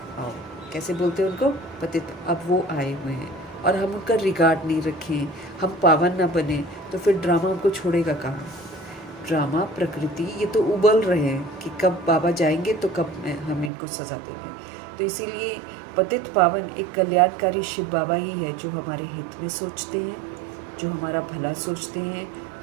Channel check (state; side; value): drops out; left; at 13.7 s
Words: आओ। कैसे बोलते हैं उनको, पतित, अब वो आए हुए हैं और हम उनका रिगार्ड नहीं रखें, हम पावन ना बने, तो फिर ड्रामा हमको छोड़ेगा कहाँ। ड्रामा प्रकृति ये तो उबल रहे हैं कि कब बाबा जाएंगे तो कब हम इनको सज़ा देंगे। तो इसीलिए पतित पावन एक कल्याणकारी शिव बाबा ही है जो हमारे हित में सोचते हैं, जो हमारा भला सोचते हैं।